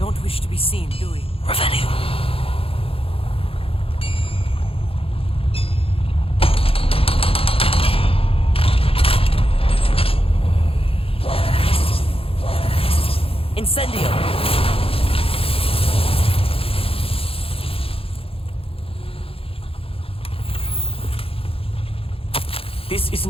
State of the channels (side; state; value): right; late; 0.27 ms